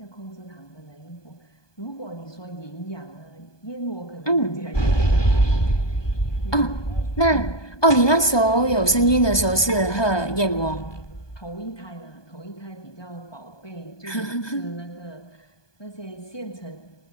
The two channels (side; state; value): right; late; 1.2 ms